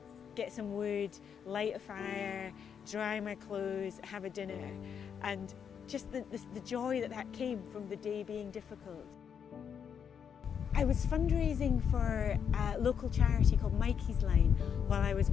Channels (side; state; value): right; quieter; 7.5 dB